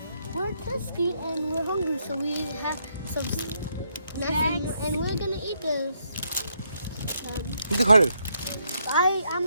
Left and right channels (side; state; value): both; inverted; correlation -0.76